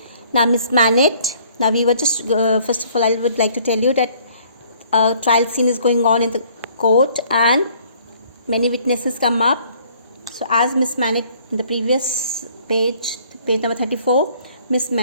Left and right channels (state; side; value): inverted; both; correlation -0.59